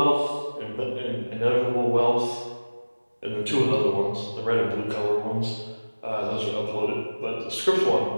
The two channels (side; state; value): both; inverted; correlation -1.00